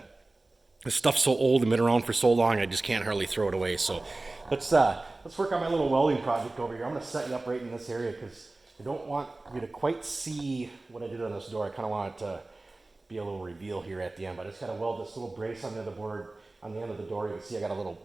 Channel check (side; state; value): left; quieter; 3.0 dB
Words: this stuff's so old and been around for so long, I just can't hardly throw it away. So let's work on my little welding project over here. I'm going to set you up right in this area because I don't want you to quite see what I did on this door. I kind of want it to be a little reveal here at the end, but I just got to weld this little brace on the other board on the end of the door. You can see I got a little